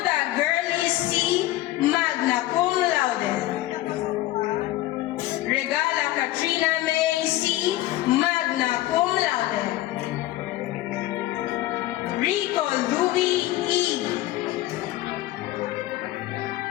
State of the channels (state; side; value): quieter; right; 15.9 dB